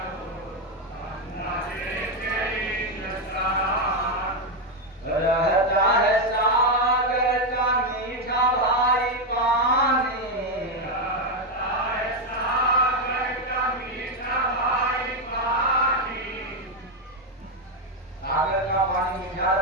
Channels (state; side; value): normal; both; correlation 0.05